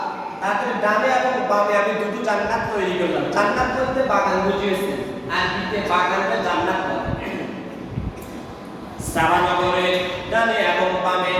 তাদের ডানে এবং বামে আমি দুটো জান্নাত তৈরি করলাম। জান্নাত বলতে বাগান বুঝিয়েছে, আর দিতে বাগানটা জান্নাত বলে। সাবা নগরের ডানে এবং বামে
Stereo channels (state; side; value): identical; both; correlation 1.00